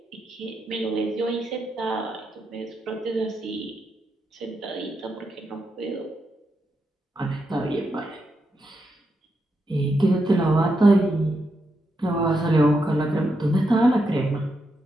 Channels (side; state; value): both; normal; correlation 0.83